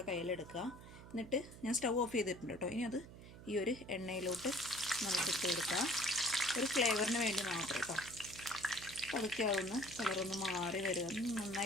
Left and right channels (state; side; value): noise; right; hum, 16 dB below the sound